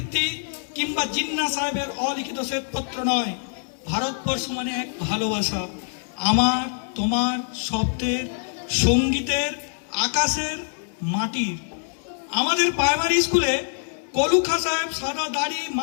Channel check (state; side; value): silent; right; digital silence